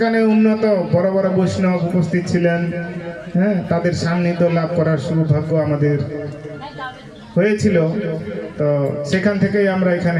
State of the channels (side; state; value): both; identical; correlation 1.00